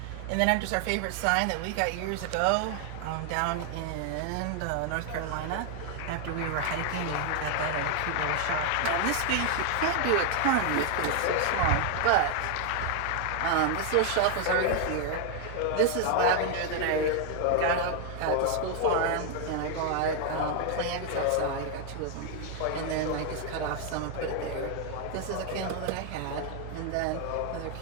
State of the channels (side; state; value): both; different; correlation 0.00